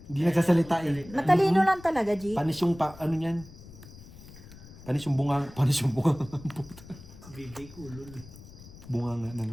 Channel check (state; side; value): noise; left; rumble, 18 dB below the sound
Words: Hindi nagsasalita eh. Matalino lang talaga, G. Panis yung ano niyan. Panis yung bunga. Puta. Bibig ulol. Bunga nga na